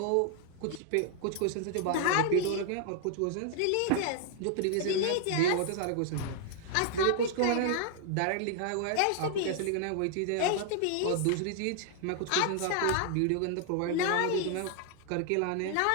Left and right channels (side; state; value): both; different; correlation 0.00